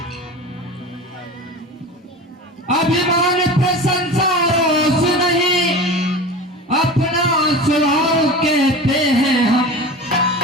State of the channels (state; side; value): normal; both; correlation 0.32